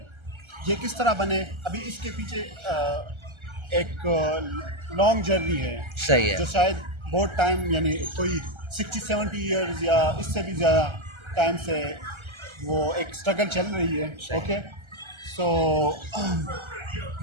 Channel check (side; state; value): left; late; 1.3 ms